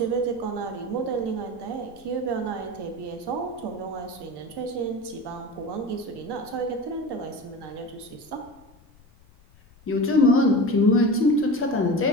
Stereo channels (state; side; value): noise; left; rumble, 27 dB below the sound